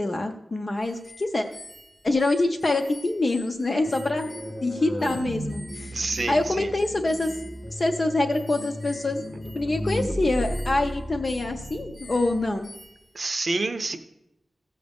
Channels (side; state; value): both; normal; correlation 0.94